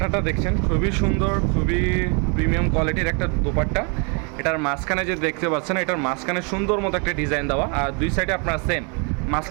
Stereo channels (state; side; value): quieter; left; 34.9 dB